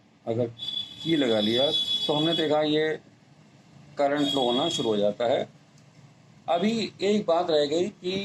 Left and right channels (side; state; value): both; identical; correlation 1.00